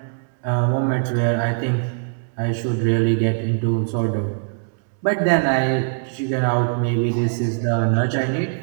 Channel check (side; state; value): left; silent; 65 dB below the other